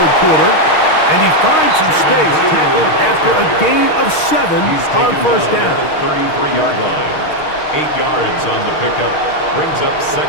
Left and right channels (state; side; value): late; right; 6.5 ms